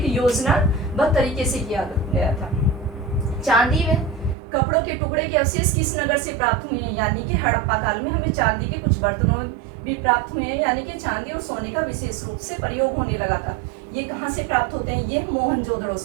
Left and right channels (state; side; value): drops out; left; at 4.4 s